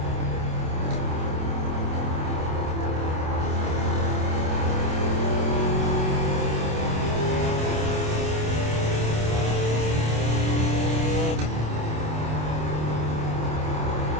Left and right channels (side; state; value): left; late; 27 ms